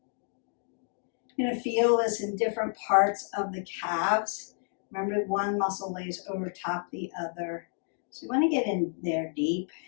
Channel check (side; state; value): right; silent; 58 dB below the other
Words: You're going to feel this in different parts of the calves. Remember, one muscle lays over top the other. So you want to get in there deep